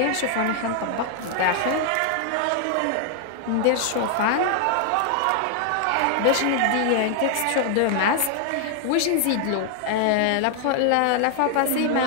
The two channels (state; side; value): different; both; correlation 0.00